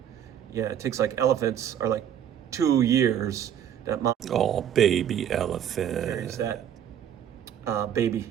Yeah, it takes elephants are 2 years That mom Oh, baby carries elephant. that baby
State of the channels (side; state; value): left; quieter; 9.7 dB